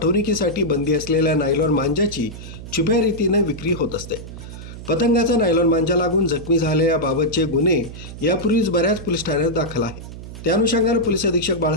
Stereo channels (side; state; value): right; noise; hum, 12 dB below the sound